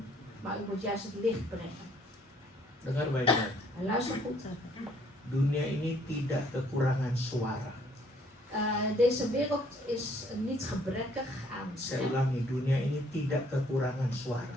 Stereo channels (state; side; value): normal; both; correlation 0.63